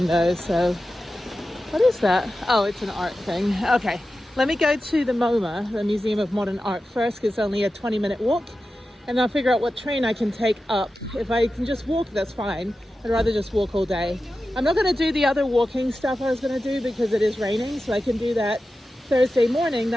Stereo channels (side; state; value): both; normal; correlation 0.93